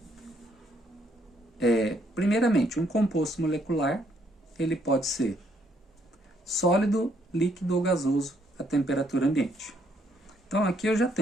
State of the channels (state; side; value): normal; both; correlation 0.71